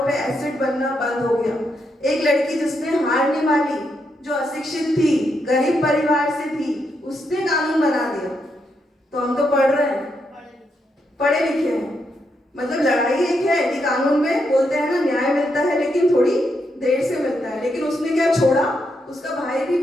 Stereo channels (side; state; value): both; normal; correlation 0.80